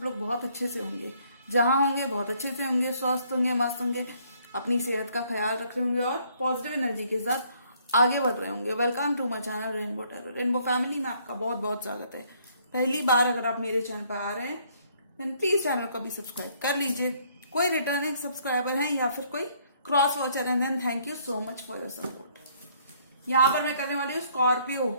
लोग बहुत अच्छे से होंगे, जहाँ होंगे बहुत अच्छे से होंगे, स्वस्थ होंगे, मस्त होंगे, अपनी सेहत का ख्याल रख रहे होंगे और पॉजिटिव एनर्जी के साथ आगे बढ़ रहे होंगे। Welcome to my channel rainbow tarot. Rainbow family में आपका बहुत बहुत स्वागत है। पहली बार अगर आप मेरे चैनल पर आ रहे हैं देन प्लीज चैनल को भी सब्सक्राइब कर लीजिए। कोई रिटर्निंग सब्सक्राइबर हैं या फिर कोई क्रॉस वॉचर है then thank you so much for your support. यहाँ पर मैं करने वाली हूँ स्कॉर्पियो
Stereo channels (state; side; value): inverted; both; correlation -0.65